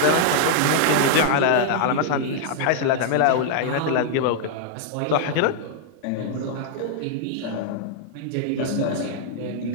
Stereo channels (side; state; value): both; different; correlation -0.01